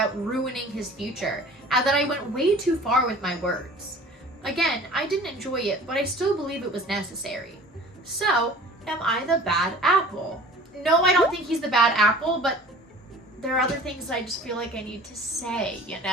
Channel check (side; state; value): both; normal; correlation 0.45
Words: ruining his future, and that I went way too far with my words. Again, I didn't enjoy it, but I still believe it was necessary. So, am I the bad apple? No, I don't think he's the bad apple, but there are other things that I just feel like I need to say, you